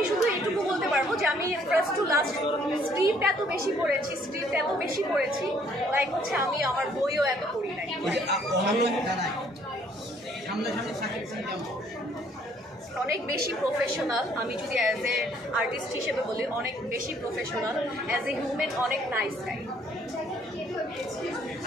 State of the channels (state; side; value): normal; both; correlation 0.63